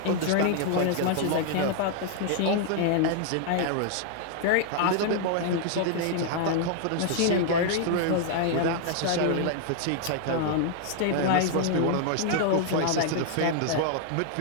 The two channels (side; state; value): both; different; correlation 0.00